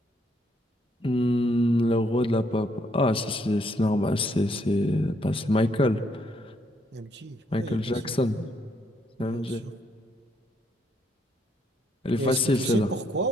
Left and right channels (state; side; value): normal; both; correlation 0.72